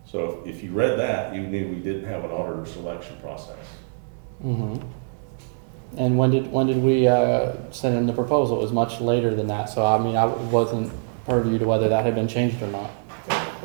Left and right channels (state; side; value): silent; left; 63 dB below the other